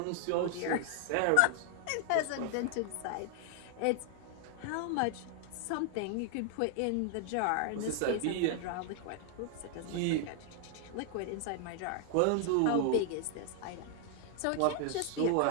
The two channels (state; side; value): different; both; correlation 0.00